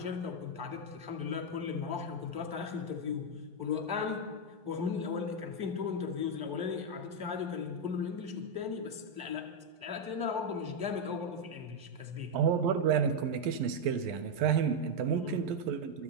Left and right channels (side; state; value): left; late; 11 ms